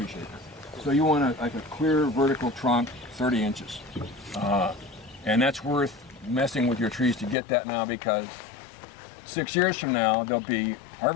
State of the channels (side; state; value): right; drops out; at 7.4 s